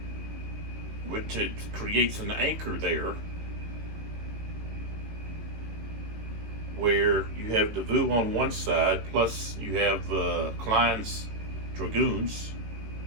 which it creates an anchor there where you have Davout on one side, plus you have Klein's Dragoons,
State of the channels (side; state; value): left; late; 18 ms